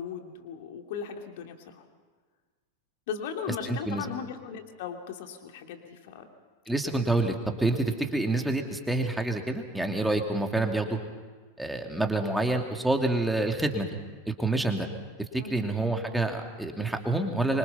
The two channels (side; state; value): both; normal; correlation 0.67